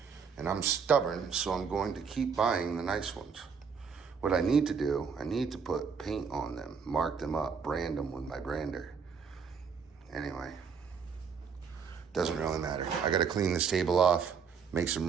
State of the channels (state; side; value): quieter; left; 6.1 dB